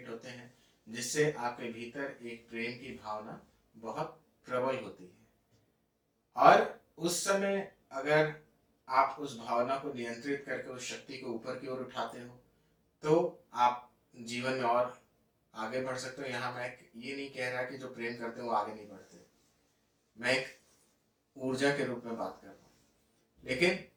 होते हैं, जिससे आपके भीतर एक प्रेम की भावना बहुत प्रबल होती है। और उस समय अगर आप उस भावना को नियंत्रित करके उस शक्ति को ऊपर की ओर उठाते हो, तो आप जीवन में और आगे बढ़ सकते हो। यहाँ मैं ये नहीं कह रहा कि जो प्रेम करते हैं वो आगे नहीं बढ़ते, मैं एक ऊर्जा के रूप में बात कर रहा हूँ। लेकिन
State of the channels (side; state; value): both; identical; correlation 1.00